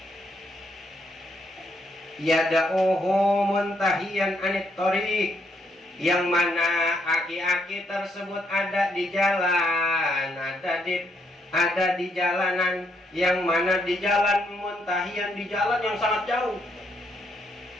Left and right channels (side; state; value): both; normal; correlation 0.75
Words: Yada'uhu muntahiyan anit tariq, yang mana aki-aki tersebut ada di jalan, ada di jalanan, yang mana di jalan muntahiyan, di jalan yang sangat jauh.